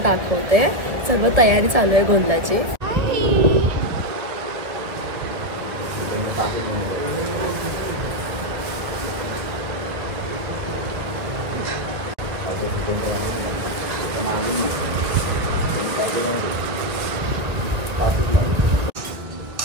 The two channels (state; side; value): late; left; 2.0 ms